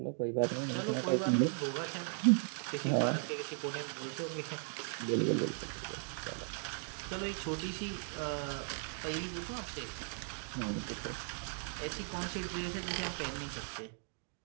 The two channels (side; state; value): left; silent; 53 dB below the other